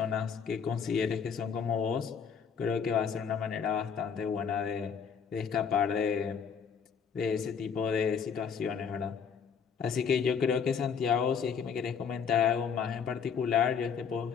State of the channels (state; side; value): quieter; right; 6.7 dB